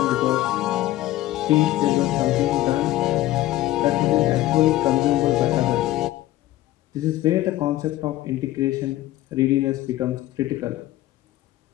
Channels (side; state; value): right; quieter; 15.5 dB